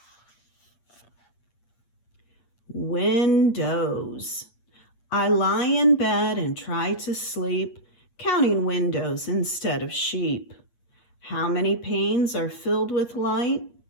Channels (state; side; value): late; right; 8.5 ms